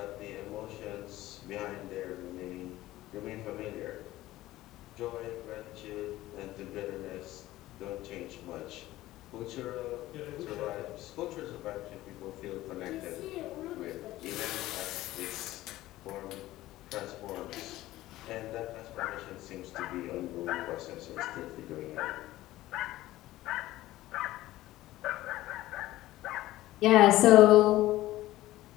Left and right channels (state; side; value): quieter; right; 16.2 dB